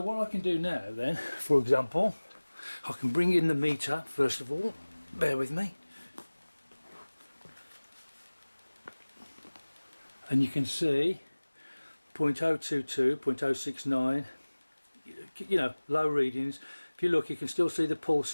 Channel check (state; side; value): inverted; both; correlation -1.00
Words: what I can do now then, for example, I can bring in the meter first of all. Bear with me. And you can see 0.022, 0.069, you know, low readings. If you look, you can still see the